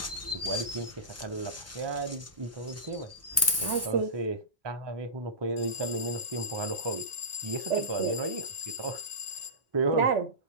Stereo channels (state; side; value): normal; both; correlation -0.20